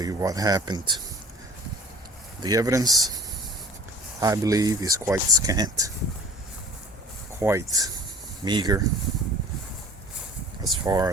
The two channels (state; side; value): normal; both; correlation 0.45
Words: what happened. The evidence, I believe, is quite scant, quite meager as far